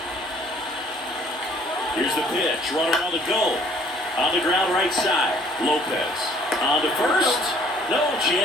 Here's the pitch, runner on the go. On the ground right side, Lopez. On to first, no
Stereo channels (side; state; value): both; normal; correlation 0.58